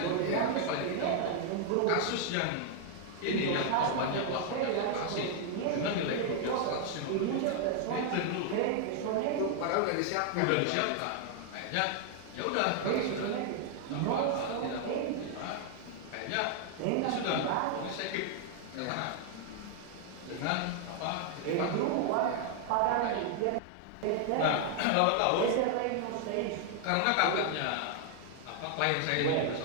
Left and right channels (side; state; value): both; different; correlation 0.00